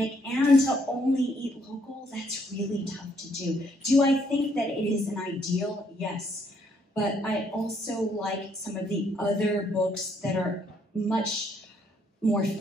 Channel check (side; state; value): both; normal; correlation 0.69